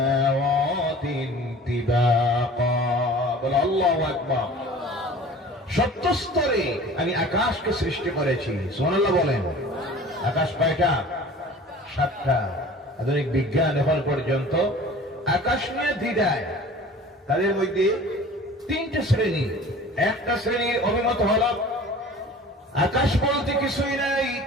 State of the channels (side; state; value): both; normal; correlation 0.43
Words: তিবাকা। বলো আল্লাহু আকবার। 70 স্তরে আমি আকাশকে সৃষ্টি করেছি। সুবহানাল্লাহ বলেন। আকাশ কয়টা? 7টা। আধুনিক বিজ্ঞান এখন পর্যন্ত আকাশ নিয়ে দ্বিধায়। তাদের মধ্যে 3টে শ্রেণী। একটা শ্রেণীর অভিমত হলো আকাশ বলতে কিছুই নাই,